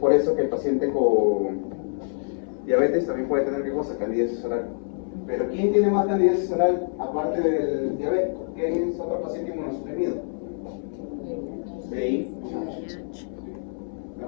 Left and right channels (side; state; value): right; silent; 61 dB below the other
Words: eso que el paciente con diabetes también puede tener, ¿qué cosa? Candidiasis oral. Pero ¿quién tiene más candidiasis oral aparte del diabético? ¿Quién es otro paciente inmunosuprimido? VIH.